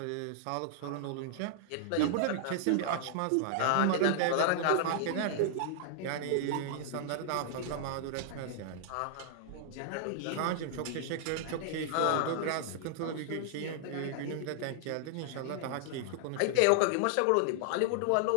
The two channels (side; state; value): both; different; correlation -0.01